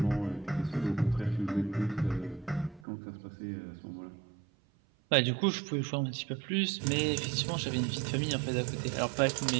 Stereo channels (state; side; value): drops out; left; at 2.8 s